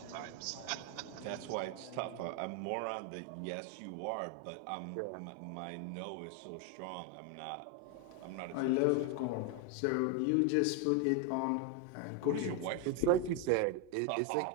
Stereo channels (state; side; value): different; both; correlation 0.01